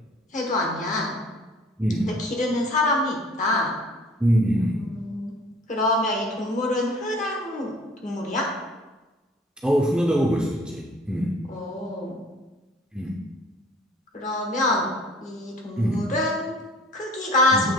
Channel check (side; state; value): both; normal; correlation 0.52